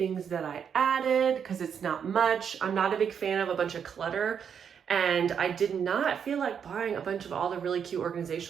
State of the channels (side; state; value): left; quieter; 7.5 dB